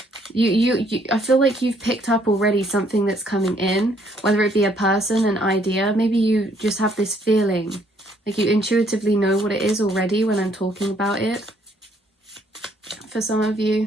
I feel like you've picked up already something that's coming in, whether it be a person, an idea. Maybe you just have this feeling, like you intuitively know what it is already when I'm talking about it. For some of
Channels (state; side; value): normal; both; correlation 0.66